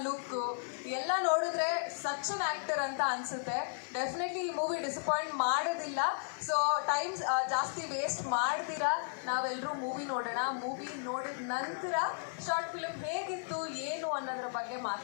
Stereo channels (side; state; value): right; silent; digital silence